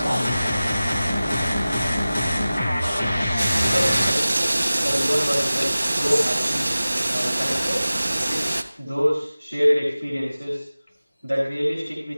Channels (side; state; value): both; inverted; correlation -0.97